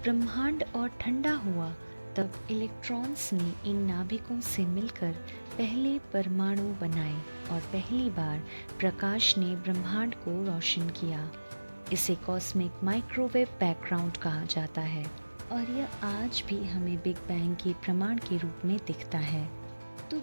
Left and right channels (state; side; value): inverted; both; correlation -1.00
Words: ब्रह्मांड और ठंडा हुआ, तब इलेक्ट्रॉन्स ने इन नाभिकों से मिलकर पहले परमाणु बनाए और पहली बार प्रकाश ने ब्रह्मांड को रोशन किया। इसे कॉस्मिक माइक्रोवेव बैकग्राउंड कहा जाता है और यह आज भी हमें बिग बैंग के प्रमाण के रूप में दिखता है। तो